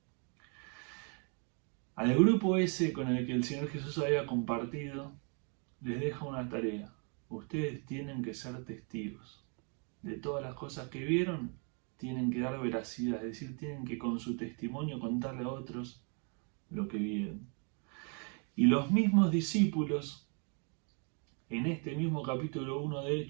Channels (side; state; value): left; quieter; 38.5 dB